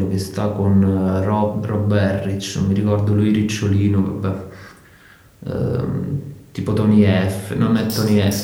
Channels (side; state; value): both; identical; correlation 1.00